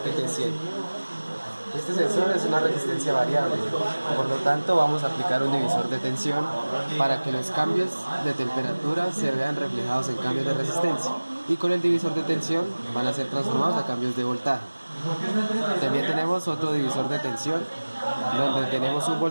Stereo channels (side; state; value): both; inverted; correlation -1.00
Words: Este sensor es una resistencia variable, por lo tanto vamos a aplicar un divisor de tensión para que los cambios de temperatura se vean reflejados en cambios de resistencia, y con el divisor de tensión van a ser transformados a cambios de voltaje. También tenemos otro divisor de tensión donde tenemos un